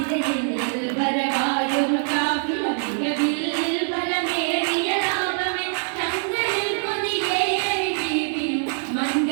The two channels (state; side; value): silent; left; 62 dB below the other